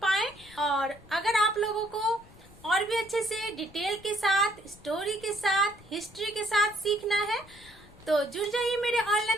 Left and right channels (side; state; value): left; noise; rumble, 23 dB below the sound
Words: पाएं। और अगर आप लोगों को और भी अच्छे से डिटेल के साथ, स्टोरी के साथ, हिस्ट्री के साथ सीखना है तो जुड़ जाइए मेरे